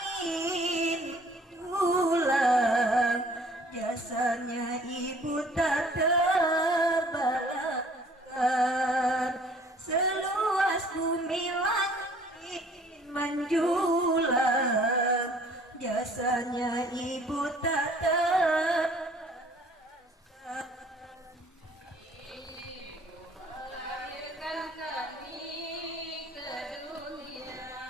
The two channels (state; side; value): normal; both; correlation 0.55